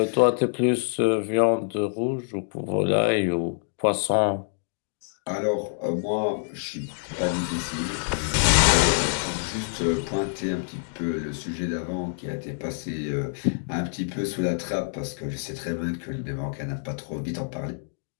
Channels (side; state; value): right; silent; digital silence